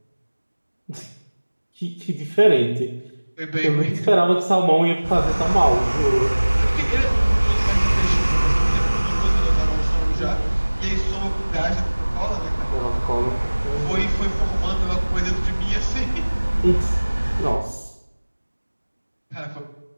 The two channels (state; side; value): inverted; both; correlation -1.00